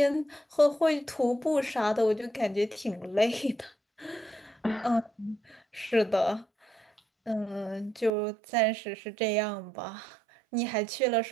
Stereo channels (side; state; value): left; drops out; at 8.1 s